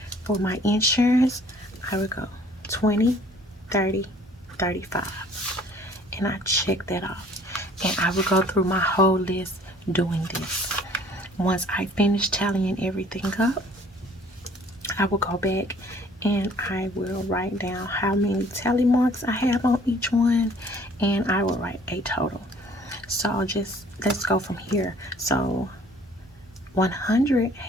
For my insurance, I would go 20, 30, 35. And I check that off. And I would go through my whole list doing this. Once I finish tallying everything up, I will go back and I will write down how many tally marks I have on each one, and I will write a total. So let's go from here. So 100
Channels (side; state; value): both; normal; correlation 0.55